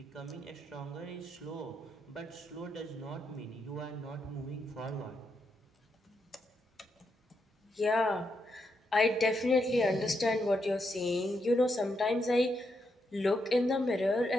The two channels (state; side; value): normal; both; correlation 0.81